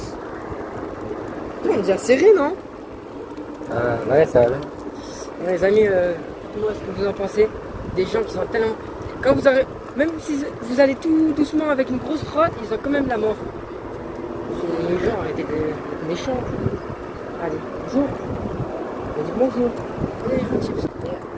On est déjà serré, non? Ouais, ça va bien. Les amis, dites-moi ce que vous en pensez. Des gens qui sont tellement. Quand vous aurez. Même si vous allez tout doucement avec une grosse trotte, ils ont quand même la mort. Les gens arrêtez d'être méchants. Allez, bonjour. On dit bonjour. Allez, gentil.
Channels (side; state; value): both; identical; correlation 1.00